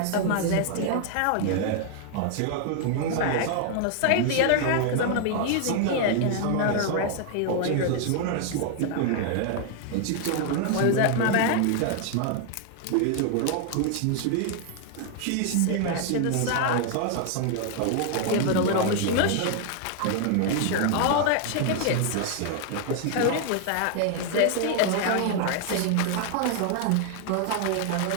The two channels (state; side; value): different; both; correlation 0.00